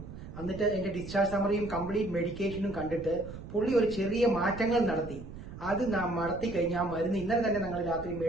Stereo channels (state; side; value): noise; right; rumble, 12 dB below the sound